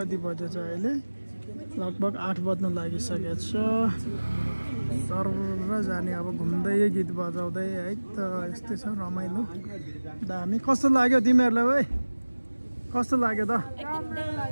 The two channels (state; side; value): inverted; both; correlation -1.00